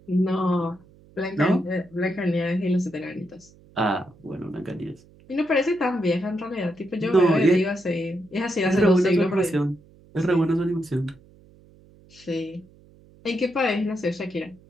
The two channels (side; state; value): right; noise; hum, 26 dB below the sound